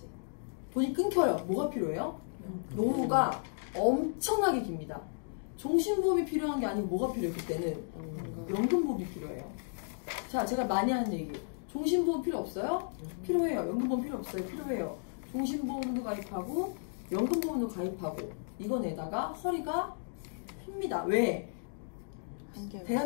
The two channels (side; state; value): right; silent; digital silence